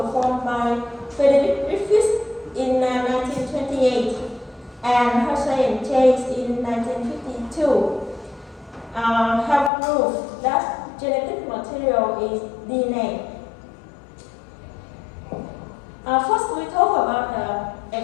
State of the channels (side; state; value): right; drops out; at 9.7 s